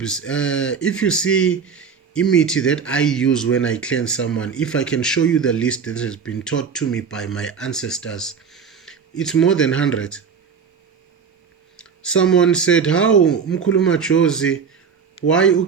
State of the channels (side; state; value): left; quieter; 6.2 dB